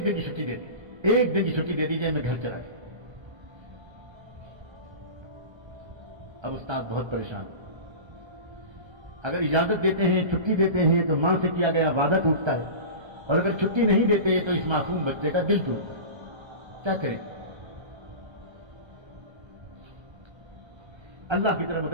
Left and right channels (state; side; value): late; left; 1.3 ms